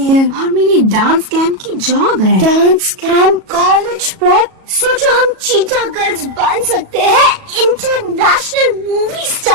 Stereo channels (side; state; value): left; late; 37 ms